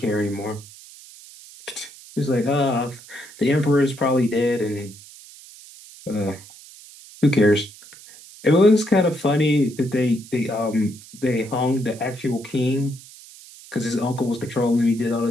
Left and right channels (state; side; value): noise; right; hiss, 20 dB below the sound